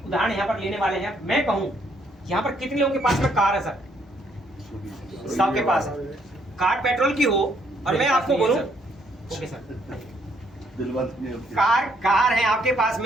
उदाहरण यहाँ पर लेने वाले हैं। मैं कहूँ यहाँ पर कितने लोगों के पास में कार है सर? सबके पास है। कार पेट्रोल की हो और मैं आपको बोलूं, ओके सर, कार है आपके पास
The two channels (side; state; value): both; normal; correlation 0.70